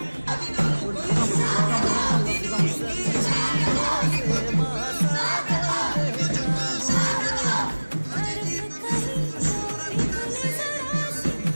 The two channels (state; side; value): inverted; both; correlation -1.00